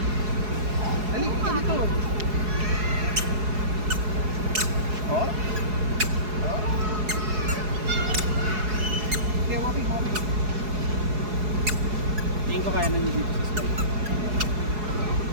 Dali, ka dito. Oh? Okay, walking. Tingin ko kaya nangyay dito sa slide.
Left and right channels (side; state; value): left; late; 4.7 ms